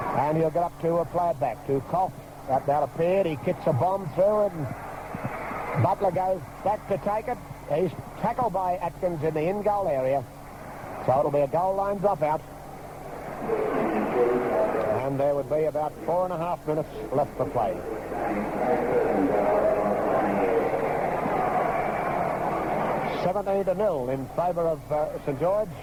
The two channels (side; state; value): both; identical; correlation 1.00